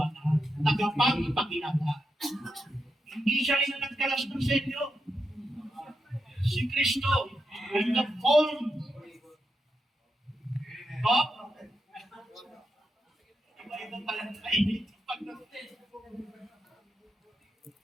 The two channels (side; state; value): both; normal; correlation 0.85